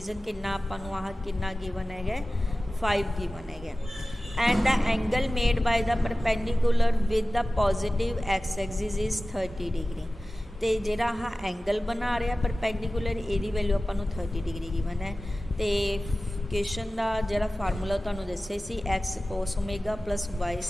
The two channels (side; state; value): both; normal; correlation 0.96